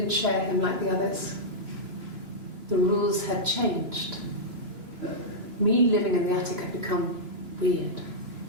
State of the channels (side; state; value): left; late; 2.9 ms